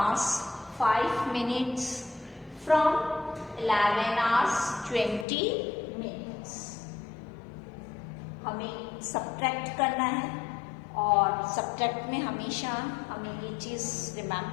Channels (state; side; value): drops out; right; at 5.2 s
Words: 5 minutes from 11 hours 20 minutes. हमें subtract करना है और subtract में हमेशा हमें ये चीज़